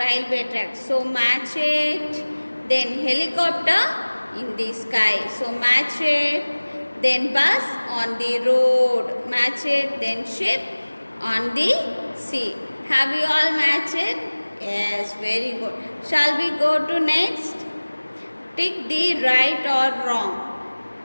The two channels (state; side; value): inverted; both; correlation -1.00